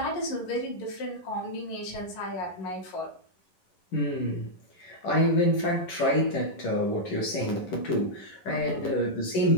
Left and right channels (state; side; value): late; right; 11 ms